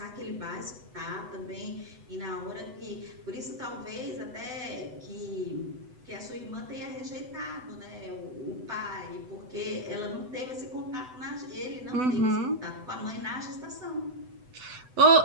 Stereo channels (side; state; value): left; late; 8.0 ms